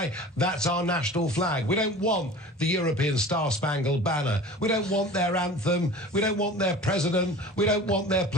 That's our national flag. We don't want the European Star-Spangled Banner. We don't want their anthem. We don't want their president. We don't want their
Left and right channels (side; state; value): both; normal; correlation 0.40